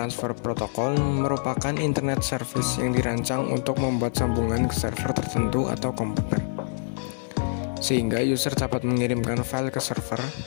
Protocol merupakan internet service yang dirancang untuk membuat sambungan ke server tertentu atau komputer, sehingga user dapat mengirimkan file ke server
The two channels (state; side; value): silent; right; 61 dB below the other